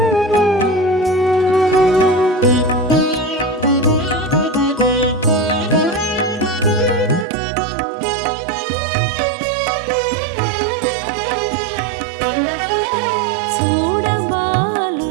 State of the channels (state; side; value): drops out; left; at 7.2 s